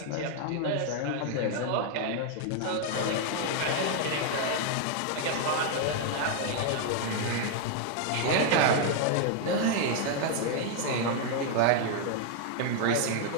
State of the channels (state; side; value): different; both; correlation 0.00